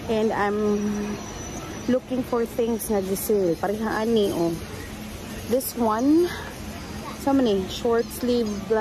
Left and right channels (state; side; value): identical; both; correlation 1.00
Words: and I'm looking for things na di-sale. Parehaan ni this one, so many short sleeve